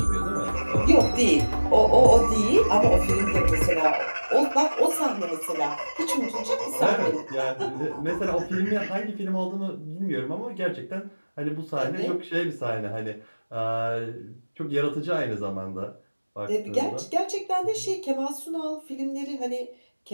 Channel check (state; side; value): inverted; both; correlation -1.00